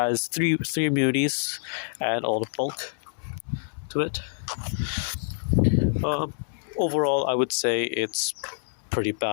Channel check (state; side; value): silent; right; 61 dB below the other